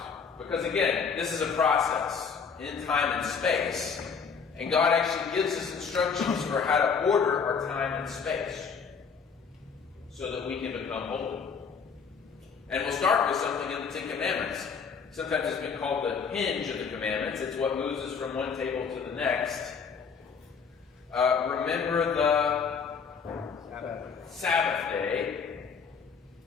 Because again, this is a process in time and space. And God actually gives us instructions for how to order our time and space so that we can become holy. And we'll start with something in the 10 Commandments. Sometimes it's been called the hinge of the commandments. It's what moves us from one table to the next. Remember the Sabbath day.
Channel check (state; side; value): quieter; right; 6.0 dB